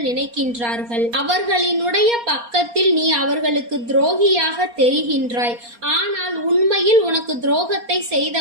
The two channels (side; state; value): left; late; 4.3 ms